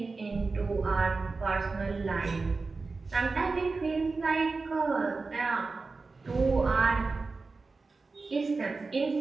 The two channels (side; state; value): left; quieter; 4.0 dB